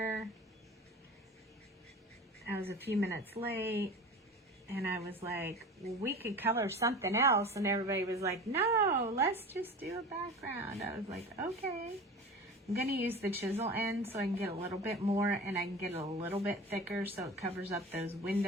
I was a few minutes late. And I was like, well, we could color something else. And everybody was like, no, let's just do a background. I was like, okay. I'm going to use the chisel end so I can get a little bit more, and I can get it a little bit thicker so it covers up those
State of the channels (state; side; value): normal; both; correlation 0.35